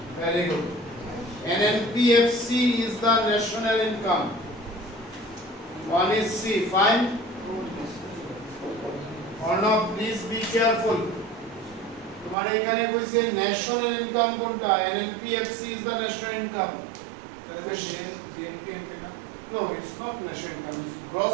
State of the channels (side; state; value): left; drops out; at 12.4 s